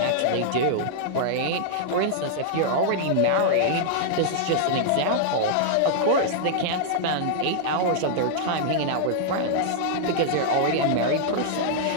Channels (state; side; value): different; both; correlation -0.01